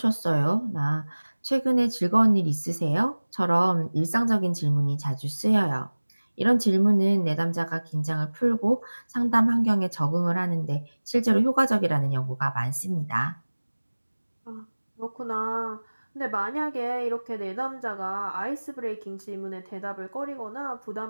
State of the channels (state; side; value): inverted; both; correlation -1.00